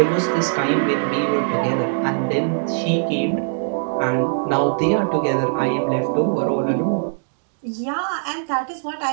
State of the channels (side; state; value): left; silent; digital silence